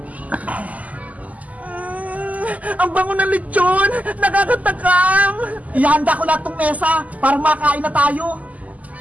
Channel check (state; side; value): late; left; 0.075 ms